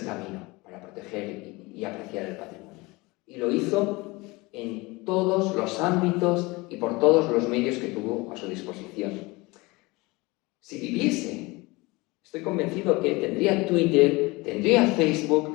camino para proteger y apreciar el patrimonio. Y lo hizo en todos los ámbitos y por todos los medios que tuvo a su disposición. Si viviese, estoy convencido que tendría Twitter, tendría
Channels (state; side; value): quieter; right; 23.6 dB